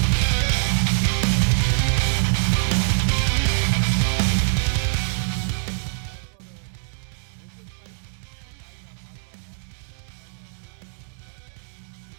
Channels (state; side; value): silent; left; digital silence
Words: As for the engine side, it has our hardware mods. It has a full system exhaust